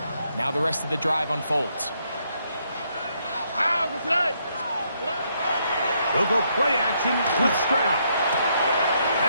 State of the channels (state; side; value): inverted; both; correlation -0.75